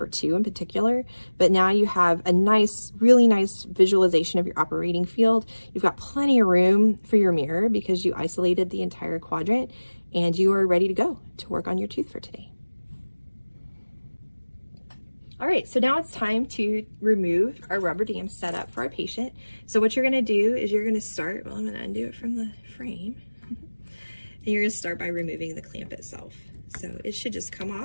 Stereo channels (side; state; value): both; inverted; correlation -1.00